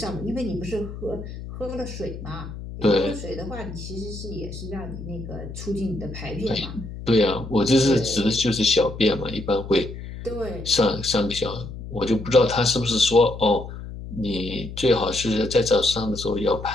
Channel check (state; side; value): noise; left; hum, 10 dB below the sound